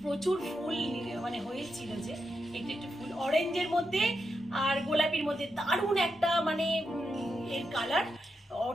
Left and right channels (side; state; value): both; normal; correlation 0.85